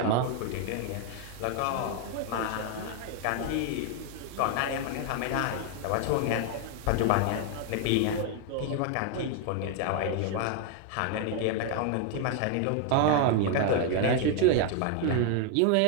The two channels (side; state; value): both; different; correlation 0.00